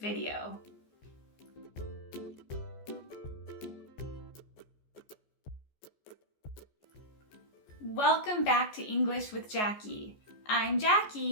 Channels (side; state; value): right; late; 14 ms